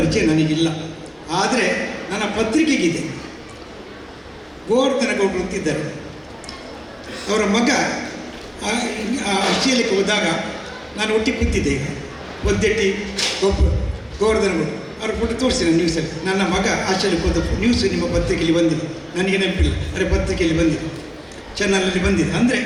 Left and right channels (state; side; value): identical; both; correlation 1.00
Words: ನನಗಿಲ್ಲ. ಆದರೆ ನನ್ನ ಪತ್ರಿಕೆಗಿದೆ. ಗೋವರ್ಧನ ಗೌಡರು ಅಂತಿದ್ದಾರೆ, ಅವರ ಮಗ ಆಸ್ಟ್ರೇಲಿಯಾಕ್ಕೆ ಹೋದಾಗ ನಾನು ಒಟ್ಟಿಗೆ ಕೂತಿದ್ದೆ. ಈಗ ಒದ್ದೆಟ್ಟಿ ಗೋವರ್ಧನ ಗೌಡರು ಅವ್ರ ಫೋಟೋ ತೋರಿಸಿದೆ ನ್ಯೂಸಲ್ಲಿ. ನನ್ನ ಮಗ ಆಸ್ಟ್ರೇಲಿಯಾಕ್ಕೆ ಹೋದ ನ್ಯೂಸ್ ನಿಮ್ಮ ಪತ್ರಿಕೆಯಲ್ಲಿ ಬಂದಿದೆ, ನನಗೆ ನೆನಪಿಲ್ಲ, ಅರೆ ಪತ್ರಿಕೆಯಲ್ಲಿ ಬಂದಿದೆ, ಚಾನಲಲ್ಲಿ ಬಂದಿದೆ. ಅಂದರೆ